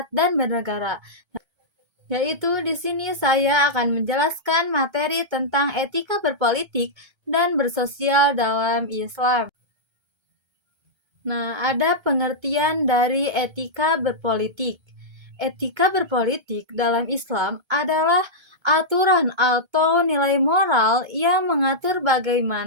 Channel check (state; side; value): late; left; 1.3 ms